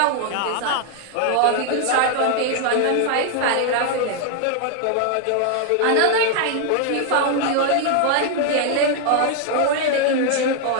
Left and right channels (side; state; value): both; different; correlation 0.00